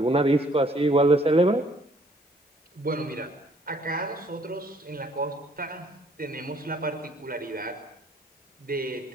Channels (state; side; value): normal; both; correlation 0.62